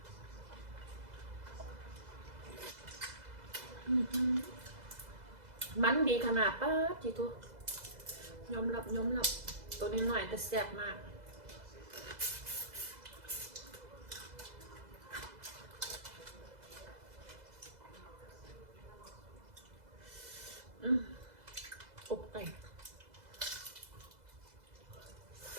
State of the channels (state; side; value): late; left; 2.0 ms